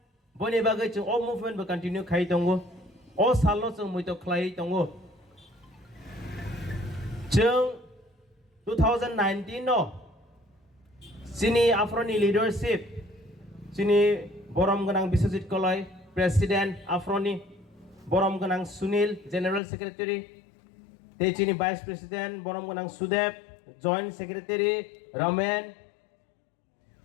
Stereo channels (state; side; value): drops out; right; at 19.6 s